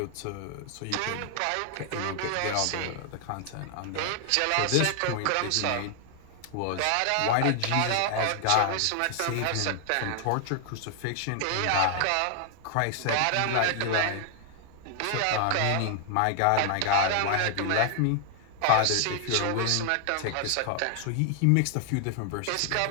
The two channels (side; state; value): both; different; correlation 0.00